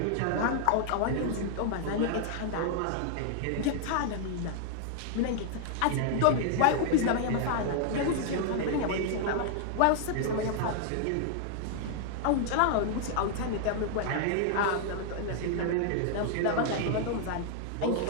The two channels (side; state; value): both; different; correlation -0.01